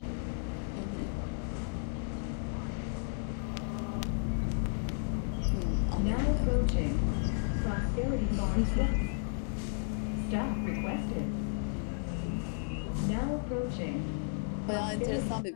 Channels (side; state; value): right; silent; 55 dB below the other